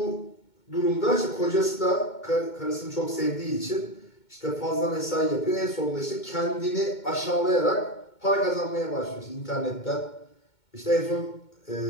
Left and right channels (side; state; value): right; late; 2.2 ms